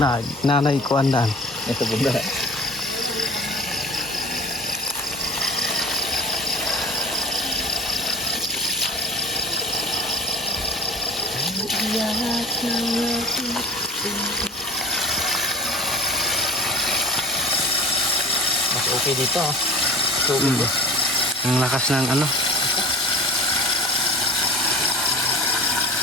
na. Nanay ko andaan. Ito bundok. Mas okay dito. Ang lakas ng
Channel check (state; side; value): normal; both; correlation 0.40